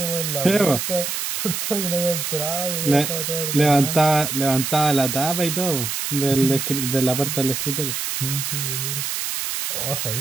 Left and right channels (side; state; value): right; noise; hiss, 3 dB below the sound